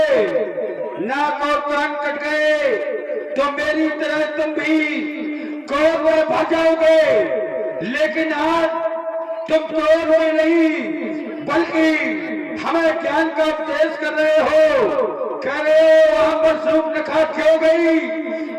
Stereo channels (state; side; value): identical; both; correlation 1.00